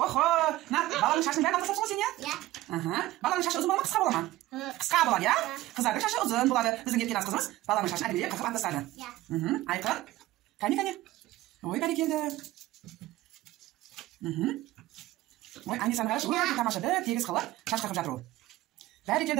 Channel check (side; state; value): left; quieter; 16.5 dB